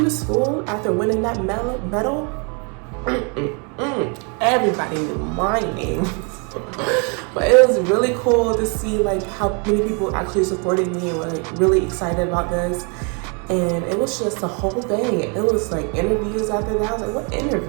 school after winning that medal, everybody knew my name. But it was really cool to see like how many people actually supported me and were like really excited about this. And it was just a whole thing. It was like interviews after that. I was like, what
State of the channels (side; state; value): left; quieter; 35.6 dB